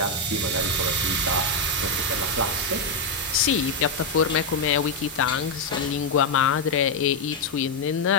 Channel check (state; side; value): quieter; right; 3.0 dB